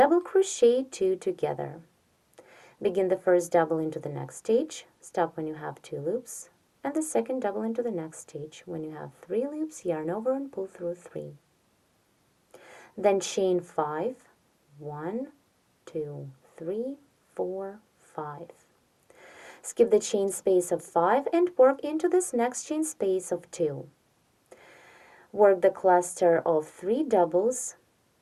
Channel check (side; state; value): both; identical; correlation 1.00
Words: crochet 2 together. Begin the first double into the next stitch, stop when you have 2 loops, and the second double into the next stitch. When you have 3 loops, yarn over and pull through 3. Then chain 5, 1, 2, 3, 4, 5. Skip the chain space of 5 and work into this next chain space of 2. Work the cluster of 3 doubles,